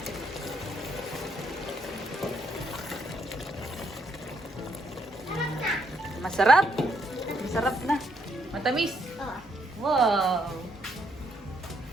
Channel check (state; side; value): normal; both; correlation 0.73